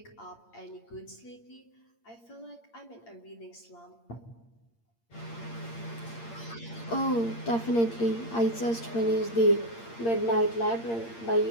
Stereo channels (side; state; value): right; late; 8.7 ms